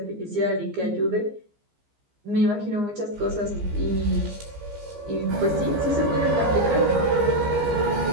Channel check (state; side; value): late; left; 15 ms